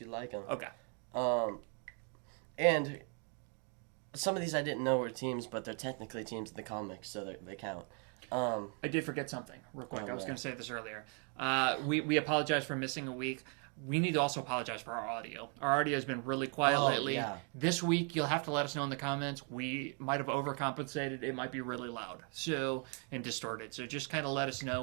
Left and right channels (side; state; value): left; quieter; 39.9 dB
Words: like them. Okay. And some of these I didn't know were teams, but they're technically teams in the comics, so they count. I did forget something real quick. I was going to say this earlier. We apologize for missing a week. We need to also apologize for our audio. Our audio has been really quiet lately. Yeah. This week, you'll have to let us know in the comments. We might have overcompensated. It might be really loud and distorted. So just kind of let us